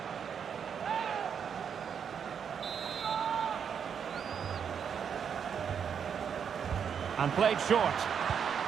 And played short.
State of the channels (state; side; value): quieter; left; 7.4 dB